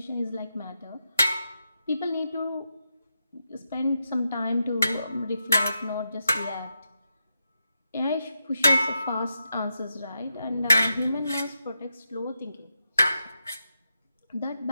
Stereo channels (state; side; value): inverted; both; correlation -0.86